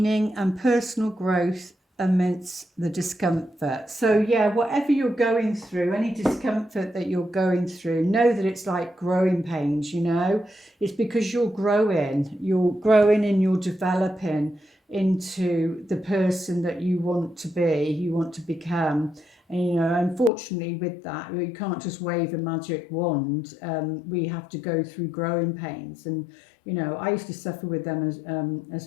and personal growth amidst the discomfort. So yeah, whatever you're going through, any discomfort that you're going through, know that it's like growing pains, it's because you're growing and you're developing into the person that you want to be, you want to become. And unfortunately with that, you can't just wave a magic wand. We have to go through growing pains. And I used to suffer with them as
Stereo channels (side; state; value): right; drops out; at 20.3 s